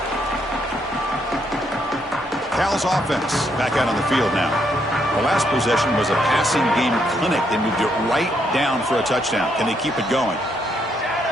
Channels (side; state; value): both; normal; correlation 0.74